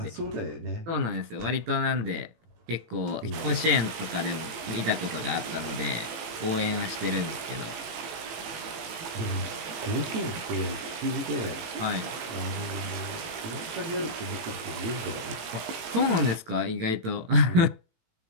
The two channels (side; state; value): left; late; 18 ms